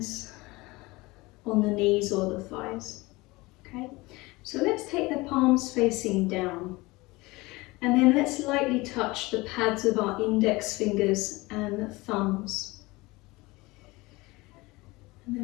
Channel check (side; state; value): right; quieter; 22.2 dB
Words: on the knees or the thighs. Okay, so let's take the palms facing down, and then let's lightly touch the pads of our index fingers and thumbs. And